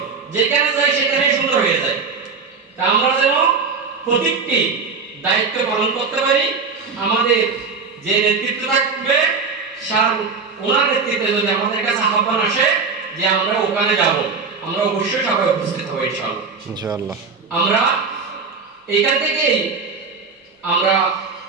যেখানে যাই সেখানেই সুন্দর হয়ে যায়। তা আমরা যেন প্রত্যেকটি দায়িত্ব পালন করতে পারি। আমাদের যে নেতৃত্ব থাকবে ওনার নেতৃত্বে যদি আমাদের কাছে আহ্বান আসে যে আমরা ওখানে যাব, আমরা অবশ্যই সবাই উপস্থিত হব ইনশাআল্লাহ। আমরা এইখান থেকেই আমরা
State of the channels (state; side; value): quieter; left; 4.9 dB